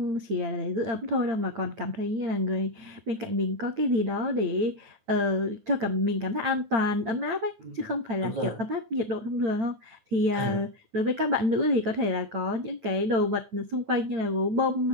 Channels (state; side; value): late; left; 9.3 ms